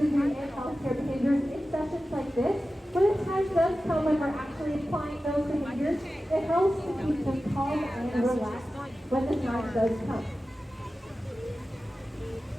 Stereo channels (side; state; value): both; normal; correlation 0.94